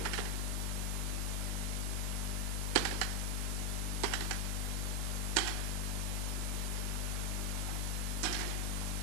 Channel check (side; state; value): both; normal; correlation 0.06